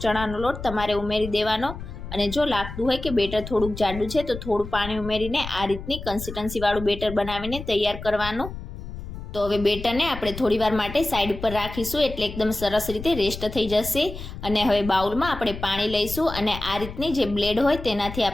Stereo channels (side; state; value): left; noise; rumble, 10 dB below the sound